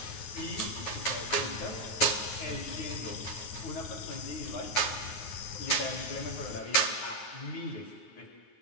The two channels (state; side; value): late; right; 9.5 ms